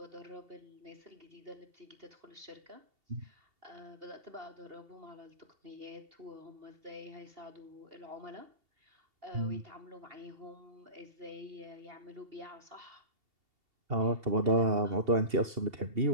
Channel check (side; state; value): left; late; 2.7 ms